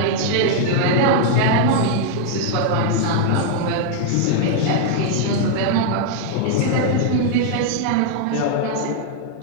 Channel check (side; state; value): both; different; correlation 0.00